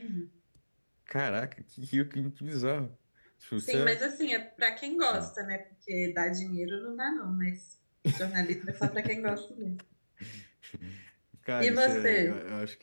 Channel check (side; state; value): both; inverted; correlation -1.00